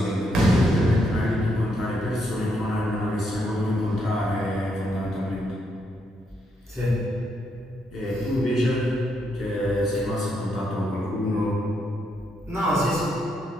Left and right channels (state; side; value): normal; both; correlation 0.78